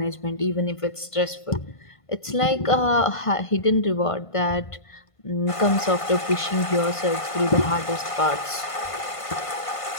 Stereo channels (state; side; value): late; right; 1.5 ms